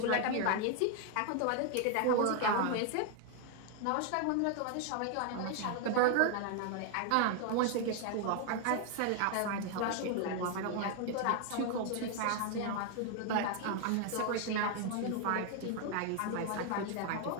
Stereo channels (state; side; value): different; both; correlation 0.01